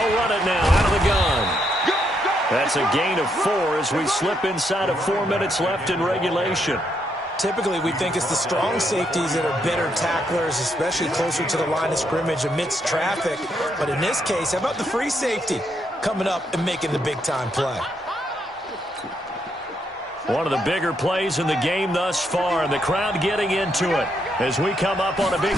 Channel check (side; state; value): both; normal; correlation 0.77